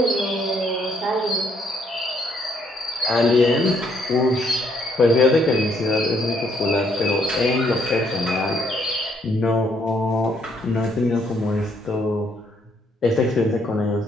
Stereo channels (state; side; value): normal; both; correlation 0.69